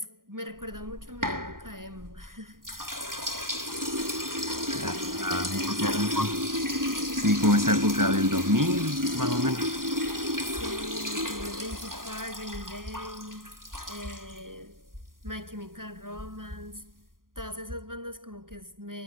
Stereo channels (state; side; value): late; left; 0.91 ms